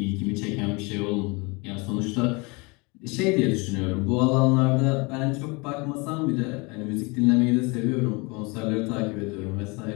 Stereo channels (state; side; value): quieter; right; 28.1 dB